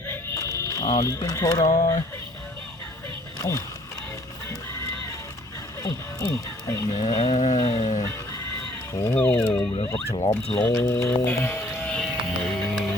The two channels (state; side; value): normal; both; correlation 0.58